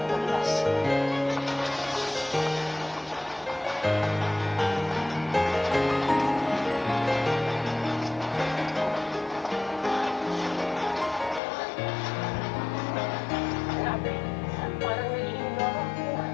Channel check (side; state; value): right; drops out; at 11.4 s